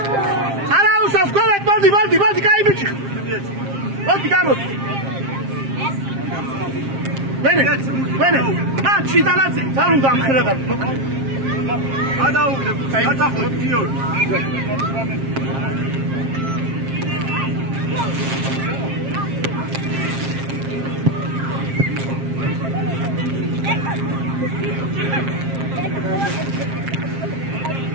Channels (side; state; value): left; late; 7.5 ms